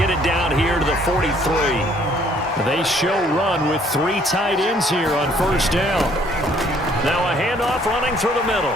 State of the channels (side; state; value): both; normal; correlation 0.62